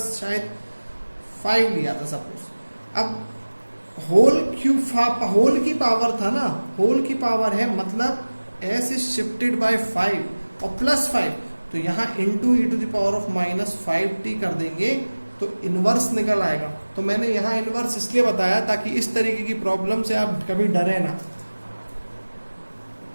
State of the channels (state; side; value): inverted; both; correlation -1.00